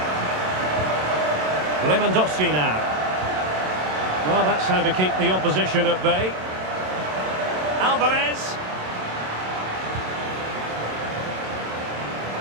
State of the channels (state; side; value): late; left; 27 ms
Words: Lewandowski now. Well, that's how to keep the opposition at bay. Alvarez.